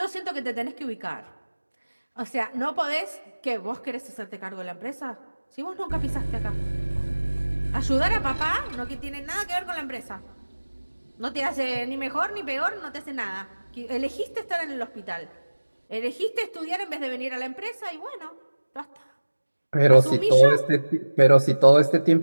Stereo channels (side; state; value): both; inverted; correlation -1.00